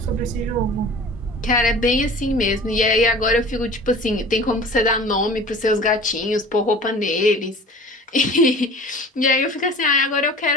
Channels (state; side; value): normal; both; correlation 0.42